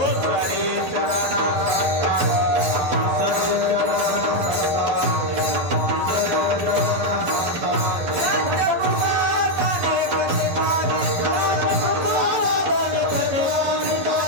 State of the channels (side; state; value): left; late; 12 ms